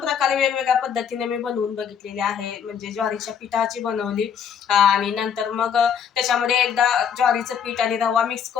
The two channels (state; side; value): quieter; right; 7.8 dB